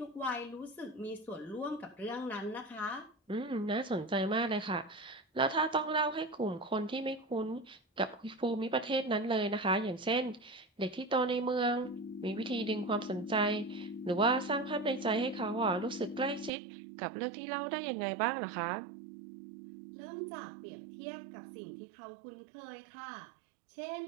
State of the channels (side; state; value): left; drops out; at 16.5 s